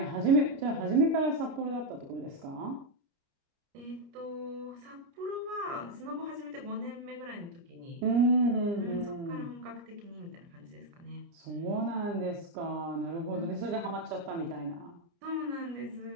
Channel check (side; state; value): left; late; 29 ms